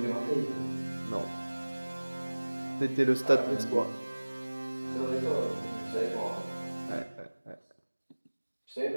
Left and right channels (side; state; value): both; inverted; correlation -1.00